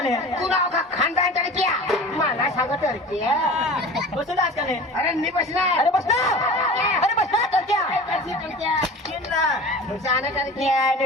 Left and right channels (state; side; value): normal; both; correlation 0.37